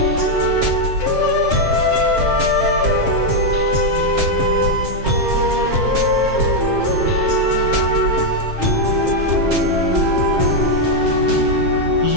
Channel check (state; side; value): late; left; 7.6 ms